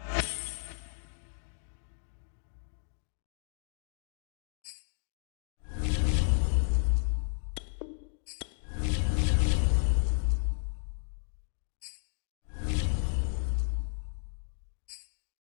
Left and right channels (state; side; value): silent; right; digital silence